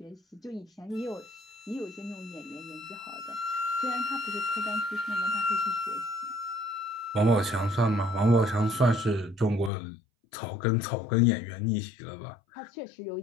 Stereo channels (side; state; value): right; drops out; at 9.7 s